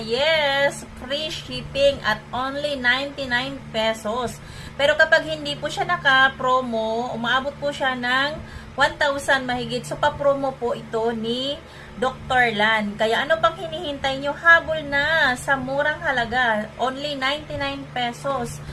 free shipping at only 99 pesos. Pero kapag hindi po siya naka-promo, umaabot po siya ng 1,000 mahigit. So, pa-promo po ito ni Dr. Lan. Kaya ano pang hinihintay nyo? Habol na sa murang halaga. Only 99 pesos.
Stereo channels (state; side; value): identical; both; correlation 1.00